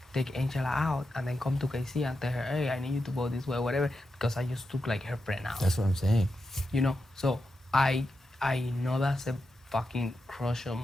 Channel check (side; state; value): both; normal; correlation 0.88